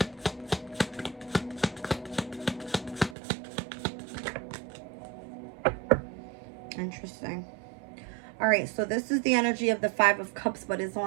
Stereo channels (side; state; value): left; drops out; at 3.2 s